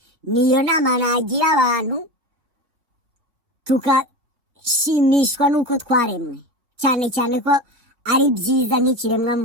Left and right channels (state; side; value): late; left; 3.5 ms